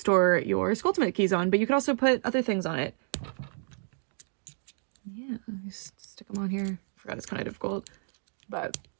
your Sculptimate keys on, but you can also put other things on it. Yeah, just stick them on here. I forgot it's kind of difficult, but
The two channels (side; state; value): left; silent; digital silence